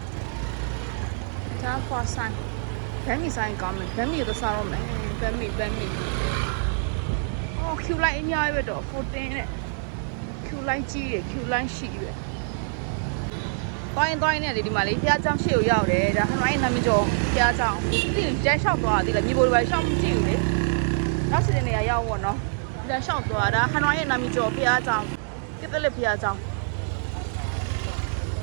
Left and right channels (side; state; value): left; silent; digital silence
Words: ဒါ for sign ဗမ်းမီဆိုင်ကောင်းမယ်ဗမ်းမီတော့စားတော့မယ်ဗမ်းမီအော် Q line အများကြီးပဲတော့14နဲ့ Q line ကြီးတယ် Q line ရှိပဲတိုင်းနဲ့လေဒီမှာလေဖျားချောင်းရှေ့ကိုရောက်တယ်ဒါဟနိုင်းနာမည်ကျော်ဖျားချောင်းဒီကျန်းလျှောက်သွားတာဒီလေမြေပေါ်တွေပဲရှောက်မကြည့်ဘူးလေနောက်စီတဲ့နေရာရောက်ပေါ့နော်ဒါလျှောက်သွားတာဟနိုင်းရဲ့နာမည်ကျော်ဖျားချောင်းပြစ်လက်ဖျားချောင်း